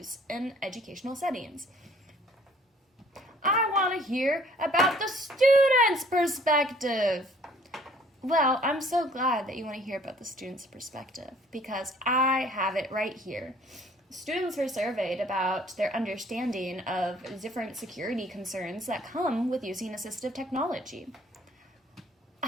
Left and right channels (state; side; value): normal; both; correlation 0.57